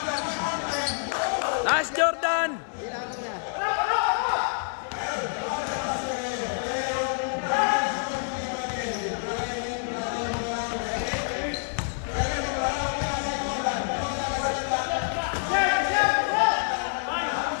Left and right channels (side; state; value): right; silent; digital silence